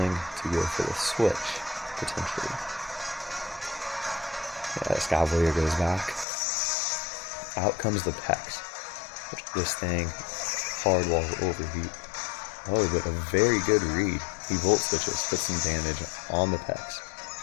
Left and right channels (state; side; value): drops out; right; at 6.2 s